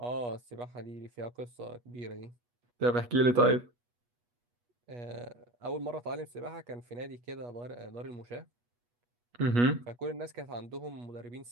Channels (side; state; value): left; late; 8.3 ms